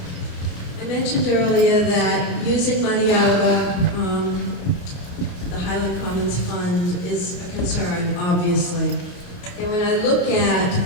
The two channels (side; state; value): right; late; 28 ms